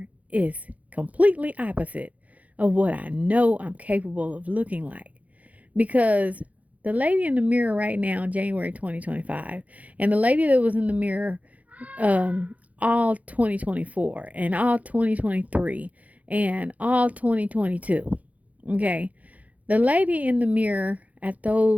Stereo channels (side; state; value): left; late; 0.071 ms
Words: is completely opposite of what I know I'm capable of looking like. Because the lady in the mirror right now, January 2025, and the lady that was in the mirror all 2024 and all 2023 and all 2022. Okay. The lady in the mirror at